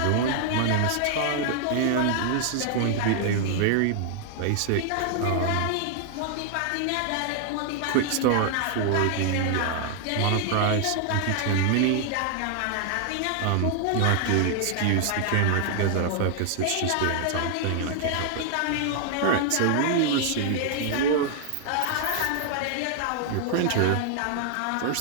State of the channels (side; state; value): both; different; correlation 0.00